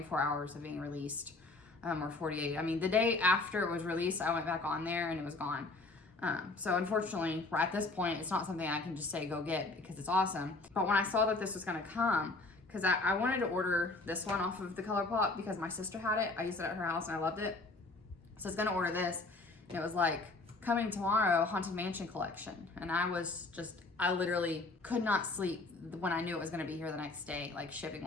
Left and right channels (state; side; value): quieter; right; 3.3 dB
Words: hours of being released, or 48. I mean, the day after it was released, I went back on there and it was gone. So unfortunately, at this point, it's not something I can just say go get because it's awesome. But when I saw that this was gonna come, because I wanted to order this one off of the Colourpop because my sister had it. I used it at her house and I loved it. So I was gonna order this, and it was like, coming tomorrow, Haunted Mansion collection. And I literally could not sleep when I knew it was gonna be here the next day, like shipping